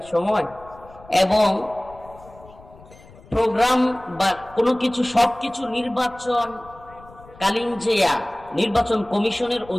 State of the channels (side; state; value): left; noise; rumble, 22 dB below the sound